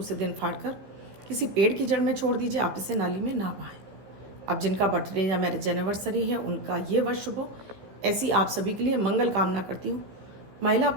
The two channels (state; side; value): late; left; 15 ms